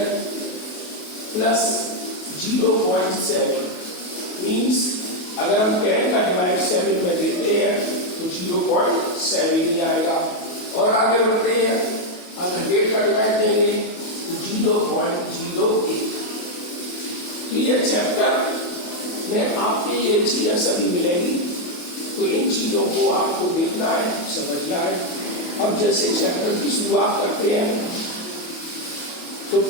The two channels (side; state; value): right; late; 28 ms